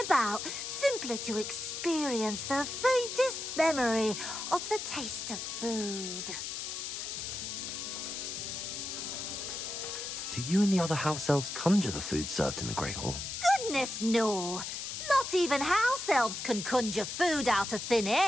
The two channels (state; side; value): noise; left; hiss, 5 dB below the sound